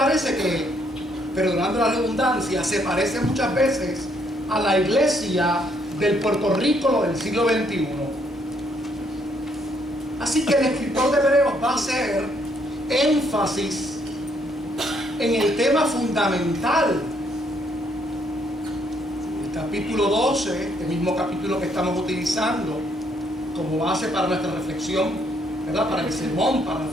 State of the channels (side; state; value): both; normal; correlation 0.70